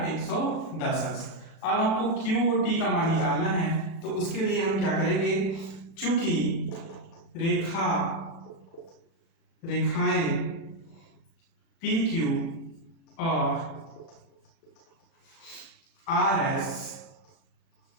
110 अंश। अब हमको QOT का मान निकालना है, तो उसके लिए हम क्या करेंगे, चूंकि रेखाएं PQ और RS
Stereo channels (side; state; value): right; late; 36 ms